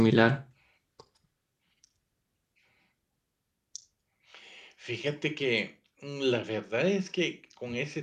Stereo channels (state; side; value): identical; both; correlation 1.00